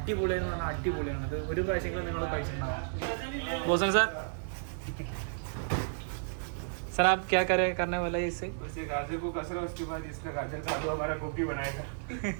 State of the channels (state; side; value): silent; left; digital silence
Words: പറഞ്ഞാൽ അടിപൊളിയാണ്. ഇത് ഒരു പ്രാവശ്യമെങ്കിലും നിങ്ങൾ കഴിച്ചിട്ടുണ്ടാവാം. ബോസൻ സാർ सर आप क्या करने वाला है इससे? उससे गाजर को कसरा, उसके बाद इसका गाजर का आलू हमारा गोभी बनाएगा.